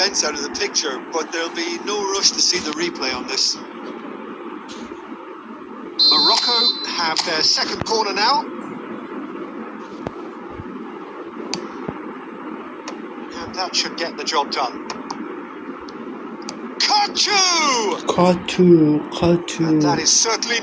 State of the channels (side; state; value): both; identical; correlation 1.00